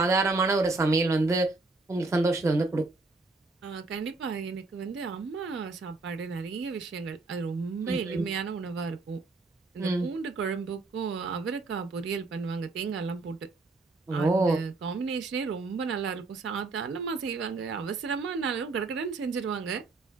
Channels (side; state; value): left; quieter; 3.5 dB